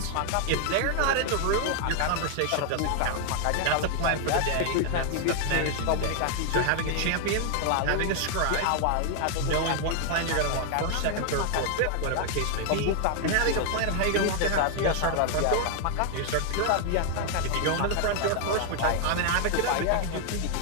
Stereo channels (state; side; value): different; both; correlation 0.00